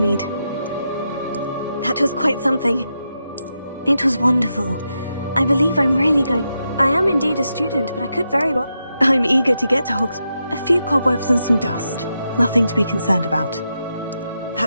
That was quite something. It was wonderful. I believe I'm really going... I am indeed a student, but I could very well... I'm eager to get to Hogsmeade. A few cobwebs and some dust. Nothing to be concerned about.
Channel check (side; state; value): both; inverted; correlation -0.85